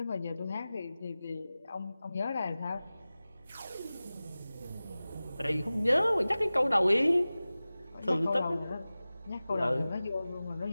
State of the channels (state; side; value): inverted; both; correlation -0.97